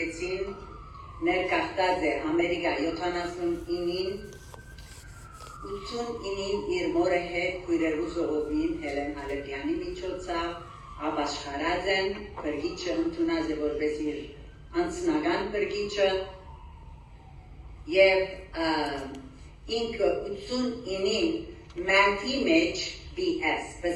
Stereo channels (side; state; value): both; identical; correlation 1.00